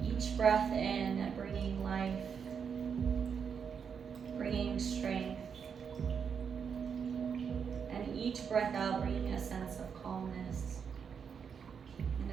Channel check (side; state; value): left; quieter; 6.8 dB